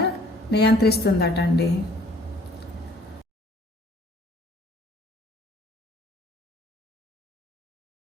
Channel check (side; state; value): both; normal; correlation 0.57